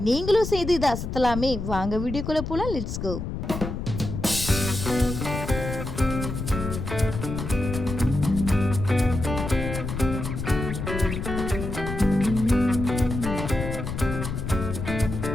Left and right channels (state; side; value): noise; left; rumble, 5 dB below the sound